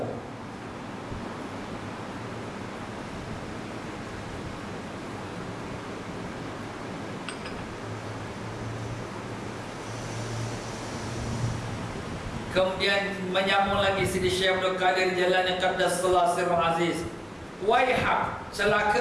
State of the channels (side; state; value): both; identical; correlation 1.00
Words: Kemudian menyambung lagi Sidi Syekh Abdul Qadir Jalani Qaddasallahu Sirrul Aziz, waihak,